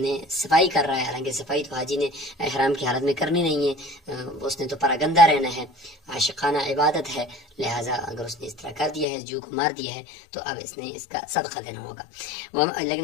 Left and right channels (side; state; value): right; drops out; at 9.1 s